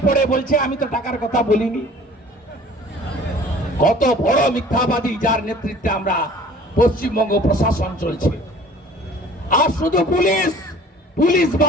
পড়ে বলছে আমি তো টাকার কথা বলিনি। কত বড় মিথ্যাবাদী, যার নেতৃত্বে আমরা পশ্চিমবঙ্গ প্রশাসন চলছে। আর শুধু পুলিশ, পুলিশ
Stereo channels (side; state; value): both; normal; correlation 0.48